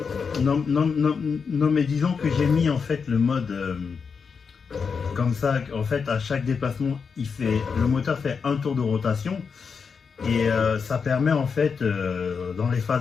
Non, mais disons que j'ai mis en fait le mode comme ça. En fait, à chaque déplacement, le moteur fait un tour de rotation et ça permet en fait, dans les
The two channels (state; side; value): quieter; right; 5.7 dB